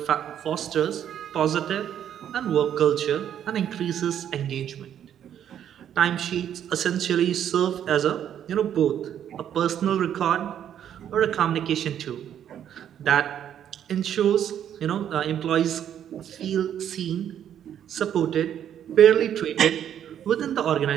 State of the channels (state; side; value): quieter; left; 9.8 dB